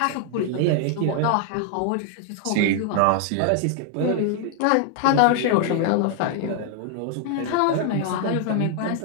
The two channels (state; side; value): different; both; correlation 0.00